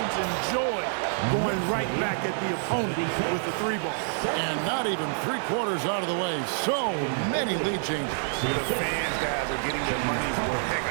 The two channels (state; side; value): silent; left; digital silence